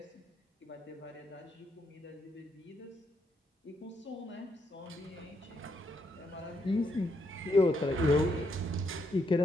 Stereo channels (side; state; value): both; normal; correlation 0.77